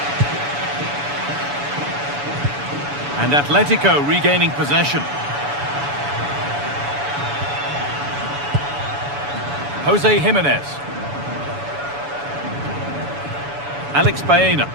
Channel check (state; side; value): late; left; 7.0 ms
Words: And Atletico regaining possession. Jose Jimenez. Alex Baena.